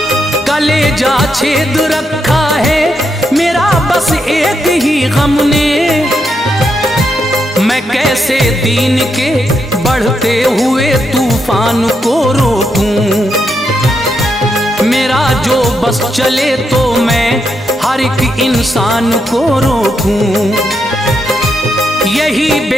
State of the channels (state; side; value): normal; both; correlation 0.81